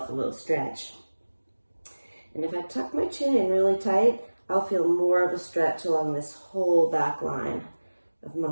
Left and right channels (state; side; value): inverted; both; correlation -1.00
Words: a little stretch. And if I tuck my chin in really tight, I'll feel more of a stretch along this whole back line of